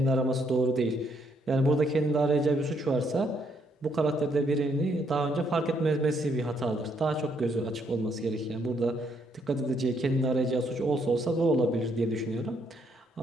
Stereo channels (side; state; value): both; normal; correlation 0.72